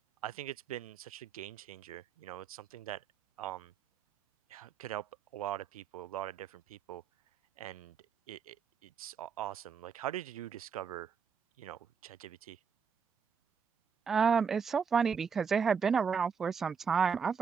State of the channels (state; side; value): quieter; left; 6.4 dB